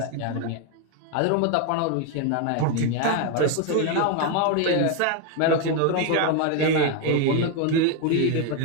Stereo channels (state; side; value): different; both; correlation 0.01